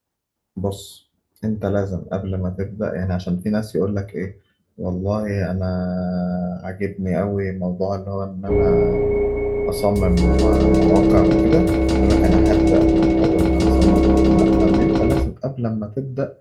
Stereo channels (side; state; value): both; identical; correlation 1.00